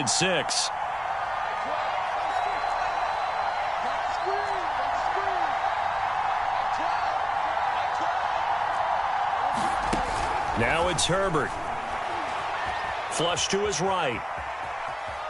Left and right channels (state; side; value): identical; both; correlation 1.00